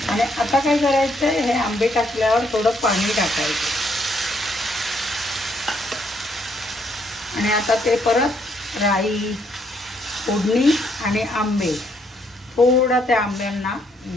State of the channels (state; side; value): normal; both; correlation 0.71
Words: आणि आता काय करायचं, हे आंबे टाकल्यावर थोडं पाणी टाकायचं आणि आता ते परत राई, फोडणी आणि आंबे, थोडा त्या आंब्यांना